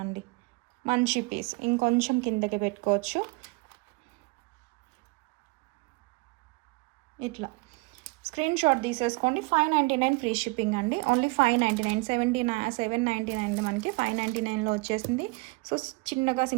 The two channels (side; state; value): left; quieter; 26.8 dB